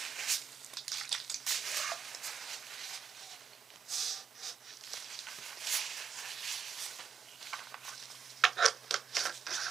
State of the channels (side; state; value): left; quieter; 7.0 dB